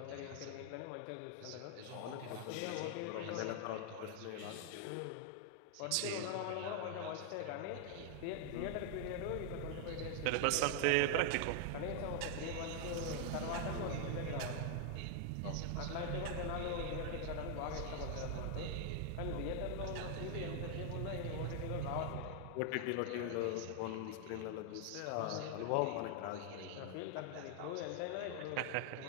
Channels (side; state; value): both; different; correlation 0.00